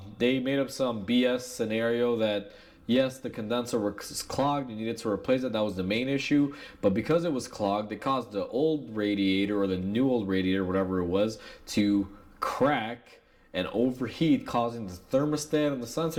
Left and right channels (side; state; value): both; identical; correlation 1.00